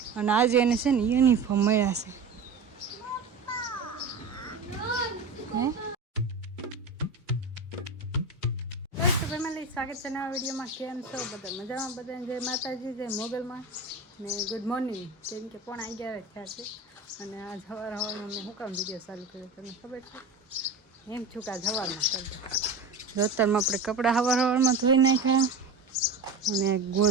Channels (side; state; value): left; quieter; 3.8 dB